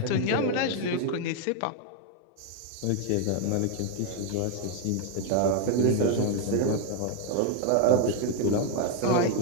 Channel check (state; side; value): different; both; correlation 0.01